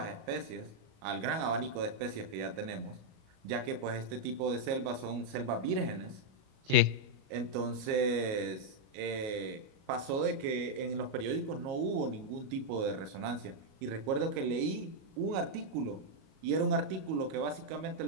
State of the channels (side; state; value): left; late; 37 ms